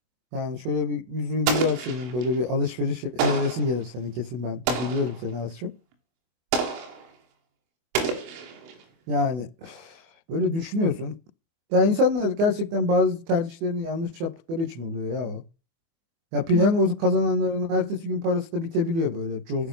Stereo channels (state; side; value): late; left; 24 ms